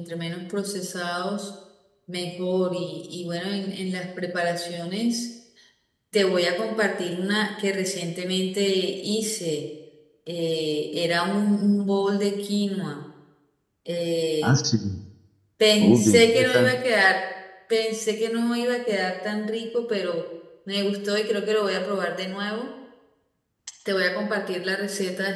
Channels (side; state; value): both; identical; correlation 1.00